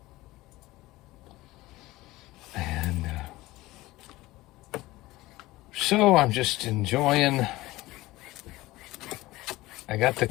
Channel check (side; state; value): right; quieter; 18.7 dB